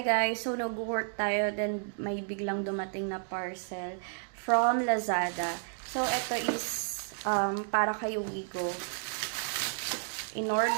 guys, so nag-work tayo, then may biglang dumating na parcel from Lazada. So ito is para kay Wigo.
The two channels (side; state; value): left; silent; digital silence